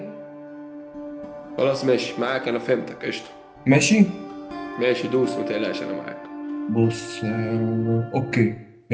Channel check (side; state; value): both; identical; correlation 1.00